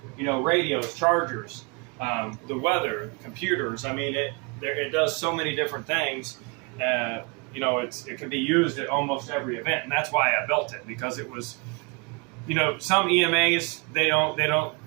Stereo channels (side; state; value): left; quieter; 30.5 dB